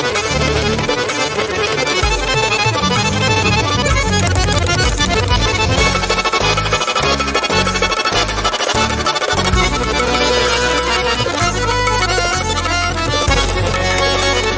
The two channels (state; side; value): identical; both; correlation 1.00